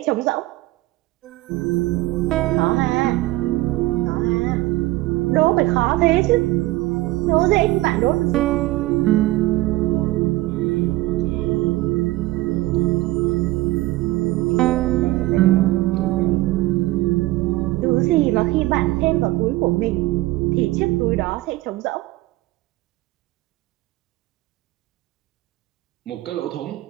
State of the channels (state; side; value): quieter; left; 18.4 dB